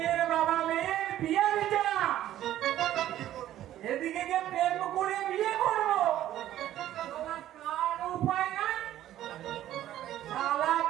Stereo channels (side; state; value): left; quieter; 12.8 dB